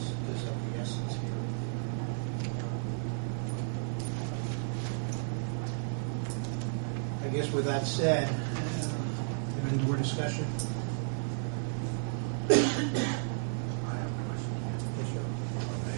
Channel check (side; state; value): left; silent; 56 dB below the other